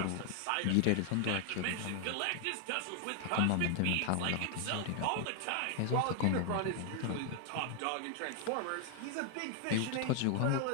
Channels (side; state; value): both; different; correlation 0.00